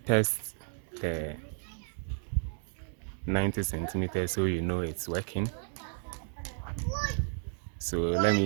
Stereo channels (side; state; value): left; silent; 56 dB below the other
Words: test the 90 centimeters so you know it's working. So let